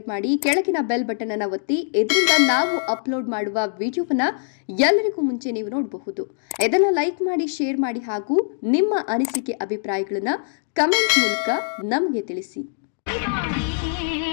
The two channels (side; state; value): right; silent; digital silence